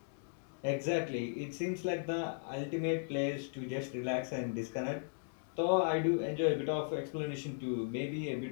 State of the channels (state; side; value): silent; right; digital silence